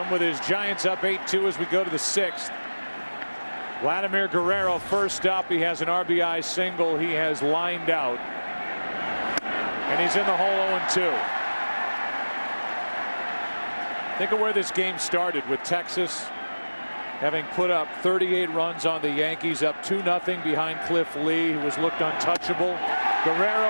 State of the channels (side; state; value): both; inverted; correlation -1.00